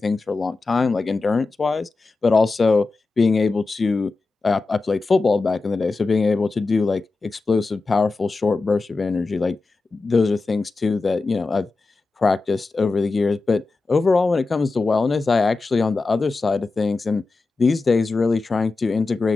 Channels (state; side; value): quieter; right; 3.7 dB